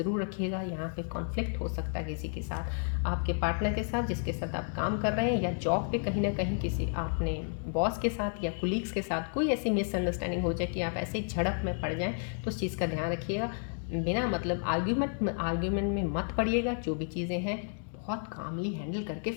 रखिएगा। यहाँ पे कॉन्फ्लिक्ट हो सकता है किसी के साथ, आपके पार्टनर के साथ जिसके साथ आप काम कर रहे हैं, या जॉब पे कहीं ना कहीं किसी आपने बॉस के साथ या कुलीग्स के साथ कोई ऐसी मिसअंडरस्टैंडिंग हो जाए कि आप ऐसे ही झड़प में पड़ जाएँ, तो उस चीज़ का ध्यान रखिएगा। बिना मतलब आर्ग्यूमेंट में मत पड़िएगा। जो भी चीज़ें हैं बहुत कामली हैंडल करके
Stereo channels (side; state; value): right; silent; 57 dB below the other